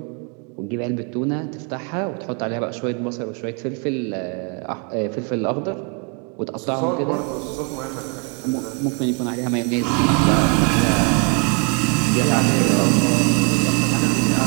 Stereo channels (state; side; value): quieter; left; 35.3 dB